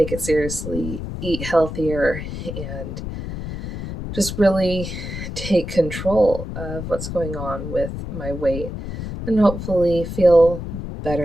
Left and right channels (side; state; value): left; noise; rumble, 7 dB below the sound